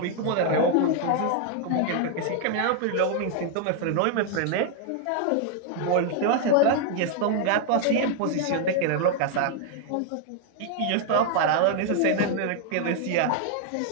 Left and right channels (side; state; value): both; different; correlation 0.00